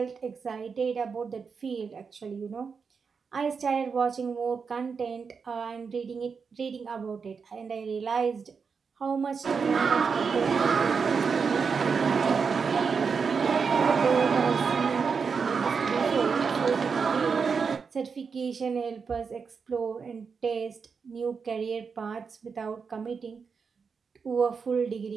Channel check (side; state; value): left; quieter; 5.6 dB